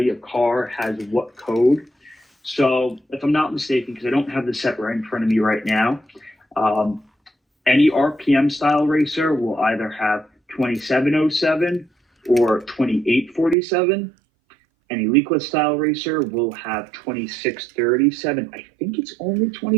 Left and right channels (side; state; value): left; drops out; at 13.6 s